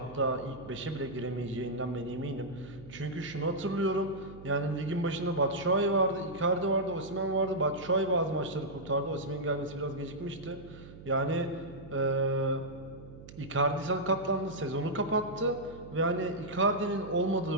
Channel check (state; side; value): noise; right; hum, 16 dB below the sound